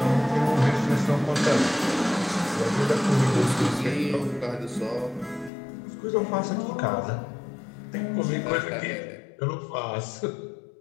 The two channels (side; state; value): right; drops out; at 5.5 s